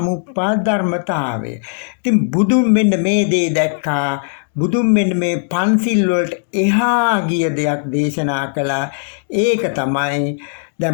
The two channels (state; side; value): silent; right; 68 dB below the other